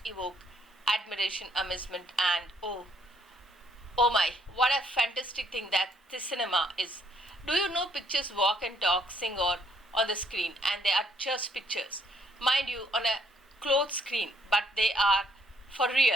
evoked admiration, amazement, and oh my, what a fantastic thing that this cinema is. Do you know pictures walk and talk, sing or on the screen, and they are just pictures. Mind you, on a clothed screen, but they are for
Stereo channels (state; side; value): normal; both; correlation 0.68